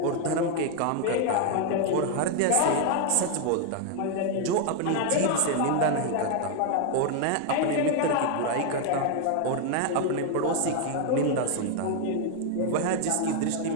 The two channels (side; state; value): both; different; correlation 0.00